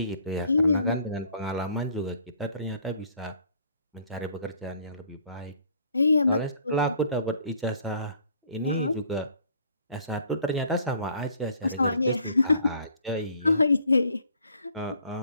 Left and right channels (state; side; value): inverted; both; correlation -0.58